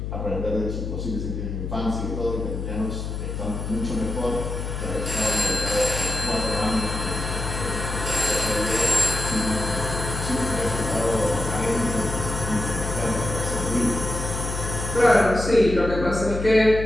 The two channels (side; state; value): left; noise; hum, 5 dB below the sound